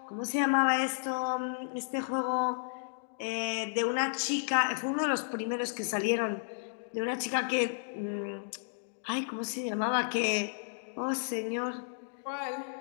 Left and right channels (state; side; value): silent; right; digital silence